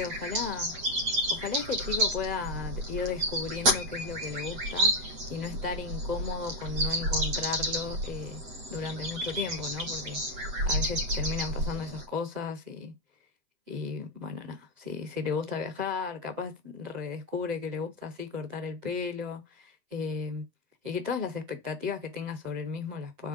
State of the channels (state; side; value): late; left; 8.1 ms